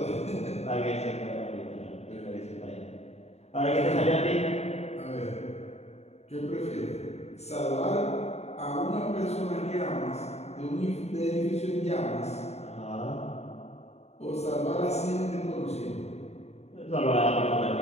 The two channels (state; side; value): late; right; 0.31 ms